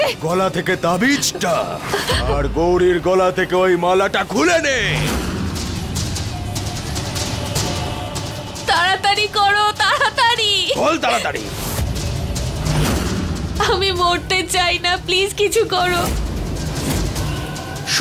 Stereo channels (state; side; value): identical; both; correlation 1.00